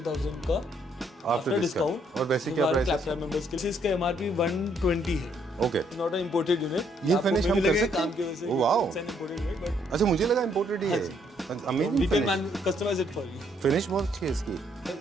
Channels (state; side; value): normal; both; correlation 0.70